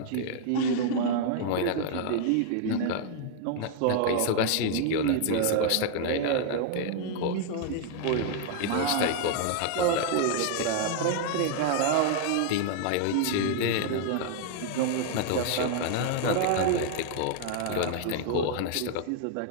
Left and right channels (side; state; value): both; different; correlation 0.00